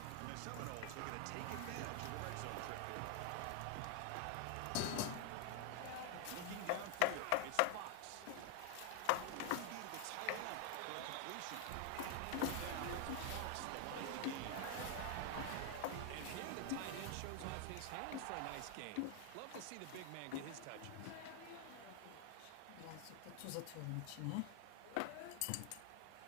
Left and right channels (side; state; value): both; different; correlation 0.00